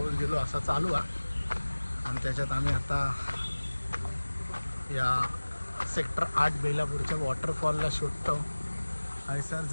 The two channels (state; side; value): inverted; both; correlation -1.00